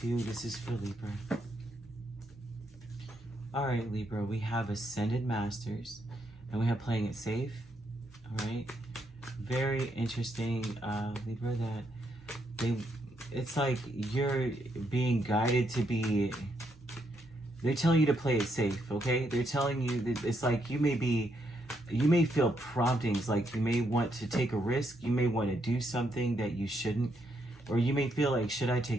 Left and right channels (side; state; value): both; normal; correlation 0.77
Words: This is for Libra. Alright Libra, we have Ascended Masters and we have Playing It Safe. Alright, very interesting Libra, that it's like you're being guided to be, they're telling you to play it safe, okay? They're telling you that it's like you may feel promptings, like you may want to take a risk, you may want to do something that you shouldn't, or you may feel like, should I